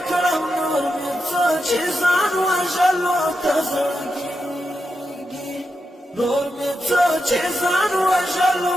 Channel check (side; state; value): both; normal; correlation 0.87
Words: نور مې څه چې ځان وژلو ته زړه کیږي نور مې څه چې ځان وژلو